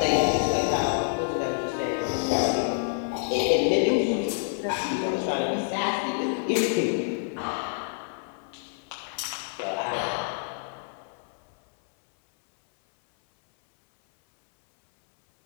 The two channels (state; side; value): silent; right; 60 dB below the other